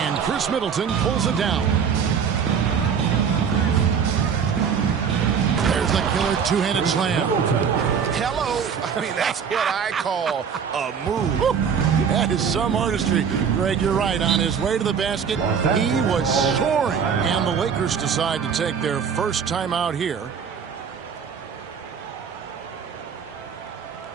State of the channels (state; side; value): quieter; left; 6.9 dB